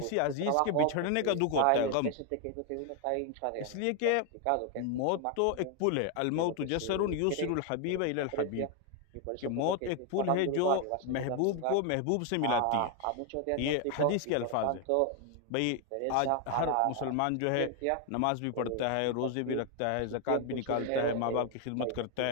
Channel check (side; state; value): both; different; correlation 0.01